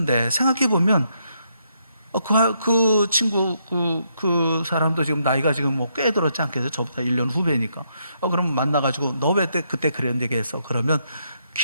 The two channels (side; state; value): both; inverted; correlation -0.77